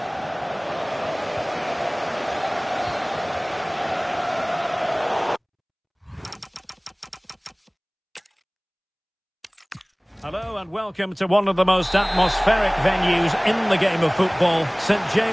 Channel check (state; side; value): identical; both; correlation 1.00